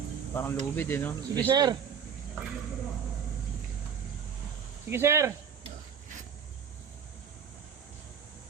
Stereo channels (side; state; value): left; quieter; 7.4 dB